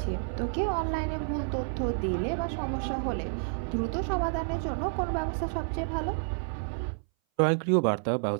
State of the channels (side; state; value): left; silent; 58 dB below the other